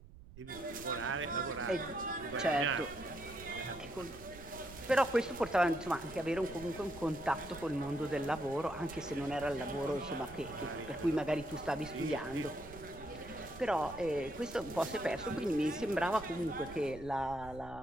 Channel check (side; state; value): right; noise; rumble, 17 dB below the sound